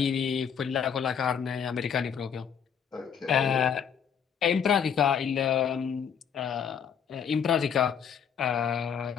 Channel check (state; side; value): quieter; right; 7.6 dB